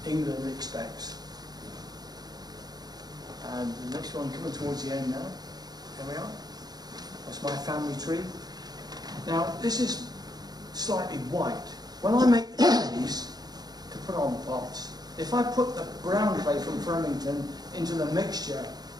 England expects. And the next one coming towards the end now. Here we are. That's my family tree. Now this is slightly white. When I make the trees to put on the pots, if I put the brown clay from Flemington into the mixture,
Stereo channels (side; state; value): left; late; 0.19 ms